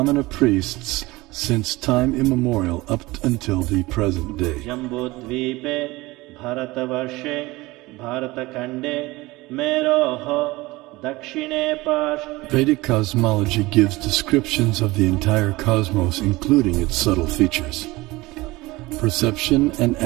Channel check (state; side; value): quieter; left; 20.7 dB